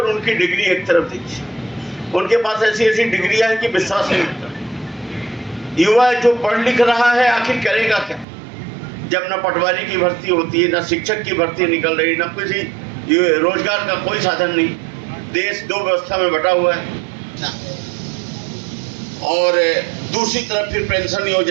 उनकी डिग्री एक तरफ देखिए। उनके पास ऐसी ऐसी डिग्रियां हैं कि विश्वास नहीं होता। युवा जो पढ़ लिख रहा है आखिर करेगा क्या, जब न पटवारी की भर्ती होती है, न शिक्षक की भर्ती निकल रही, न किसी रोजगार का कोई साधन नहीं। देश 2 व्यवस्था में बटा हुआ है। और दूसरी तरफ फिर पेंशन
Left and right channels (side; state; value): left; drops out; at 8.2 s